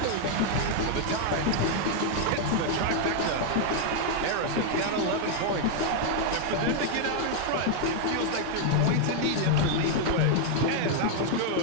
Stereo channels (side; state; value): both; different; correlation 0.00